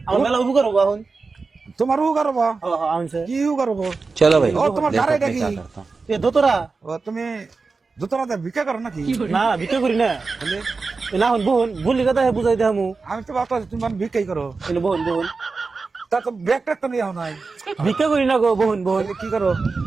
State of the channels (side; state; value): left; quieter; 4.2 dB